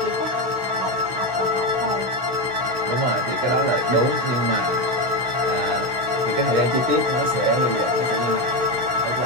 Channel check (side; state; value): left; late; 16 ms